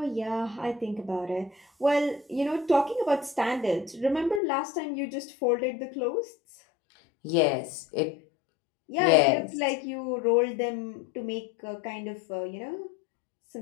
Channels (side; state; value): right; drops out; at 4.4 s